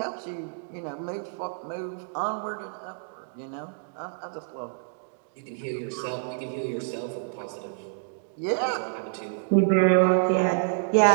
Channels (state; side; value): silent; left; digital silence